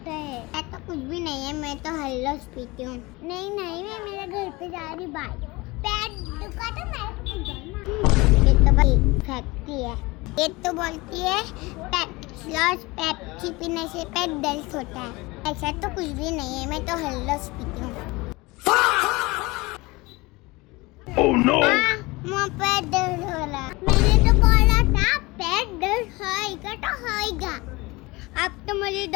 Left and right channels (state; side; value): quieter; right; 23.0 dB